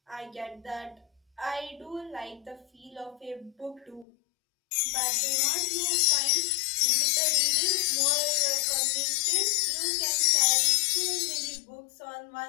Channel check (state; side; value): drops out; right; at 4.0 s